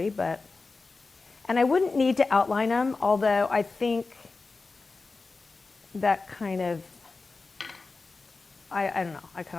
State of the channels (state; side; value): quieter; right; 3.9 dB